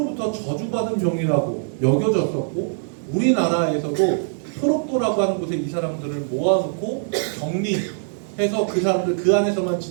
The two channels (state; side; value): silent; left; digital silence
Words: 저주받은 병이라고 여겨졌었고 우리나라에서도 소록도라고 하는 곳에 이 사람들을 모아놓고 격리해서 그 사람들 그 안에서만